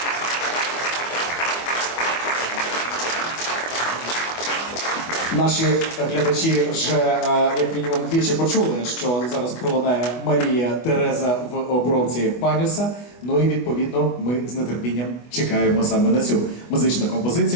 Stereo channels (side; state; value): right; late; 24 ms